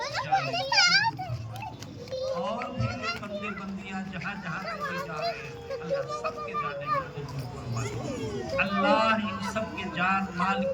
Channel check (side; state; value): both; identical; correlation 1.00